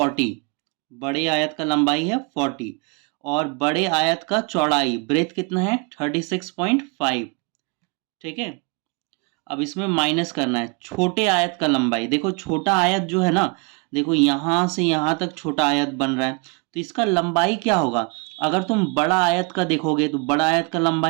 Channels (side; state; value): left; quieter; 32.0 dB